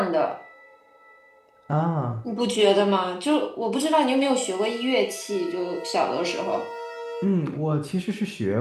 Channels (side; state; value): both; identical; correlation 1.00